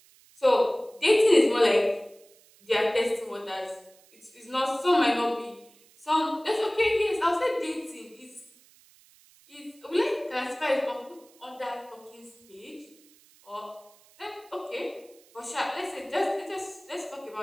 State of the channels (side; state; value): right; noise; hiss, 28 dB below the sound